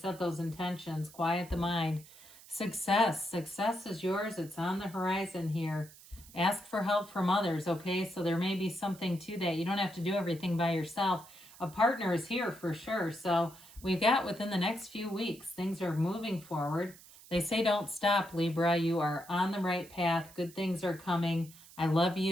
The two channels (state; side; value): noise; right; hiss, 21 dB below the sound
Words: those intentions. Quiet the mind. Success. Success is yours. It's on the horizon here. Ask for help from others, okay? So there may be something to that. You don't have to do everything by yourself. A partner is here for sure. So we've got within the next few weeks, things are moving forward. They say don't stop, Libra. You are on the right path. Good things are coming. I love